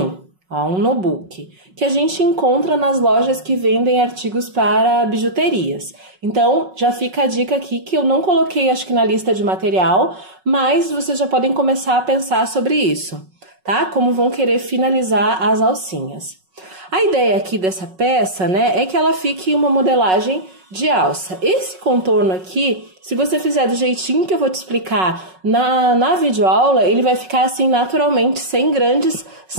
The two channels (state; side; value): late; left; 5.4 ms